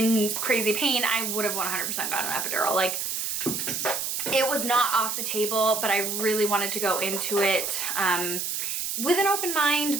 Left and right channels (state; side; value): noise; right; hiss, 2 dB below the sound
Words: crazy pain, I would have 100% gotten an epidural. Like, it was not off the table, but I really wanted to go into it with an open mind,